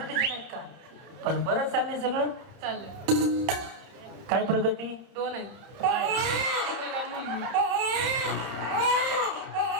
नाहीत का? पण बरंच चाललंय सगळं. चाललंय. काय प्रगती? 2 आहेत. मुलगा मुलगी.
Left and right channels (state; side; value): late; left; 30 ms